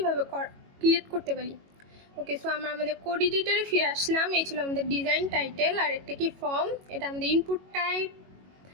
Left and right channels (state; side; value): late; left; 22 ms